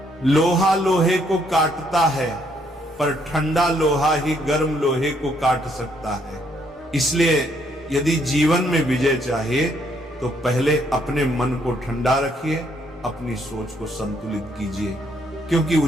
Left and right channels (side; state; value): both; normal; correlation 0.70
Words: लोहा लोहे को काटता है, पर ठंडा लोहा ही गर्म लोहे को काट सकता है। इसलिए यदि जीवन में विजय चाहिए तो पहले अपने मन को ठंडा रखिए, अपनी सोच को संतुलित कीजिए, क्योंकि